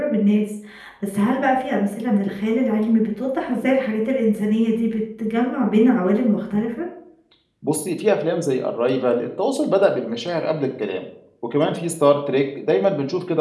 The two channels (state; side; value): identical; both; correlation 1.00